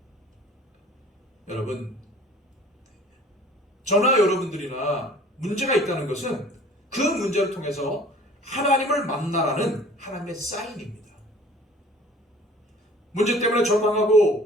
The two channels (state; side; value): normal; both; correlation 0.50